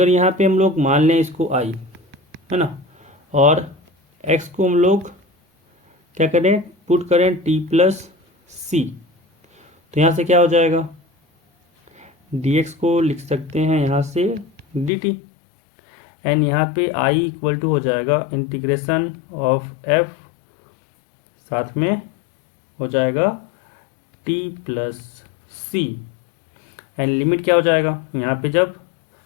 यहाँ पे हम लोग मान लें इसको i, है ना, और x को हम लोग क्या करें पुट करें t प्लस सी, तो यहाँ से क्या हो जाएगा dx को लिख सकते हैं यहाँ से dt एंड यहाँ पे i इक्वल टू हो जाएगा इंटीग्रेशन ऑफ f, साथ में हो जाएगा t plus c and limit क्या हो जाएगा, यहाँ पे जब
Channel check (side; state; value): right; drops out; at 14.9 s